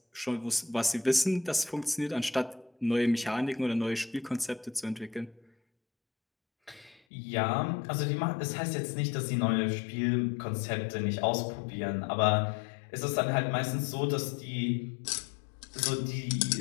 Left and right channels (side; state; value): right; drops out; at 7.0 s